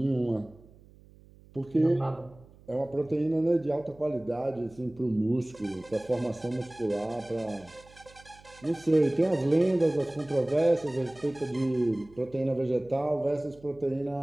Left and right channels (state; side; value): noise; right; hum, 24 dB below the sound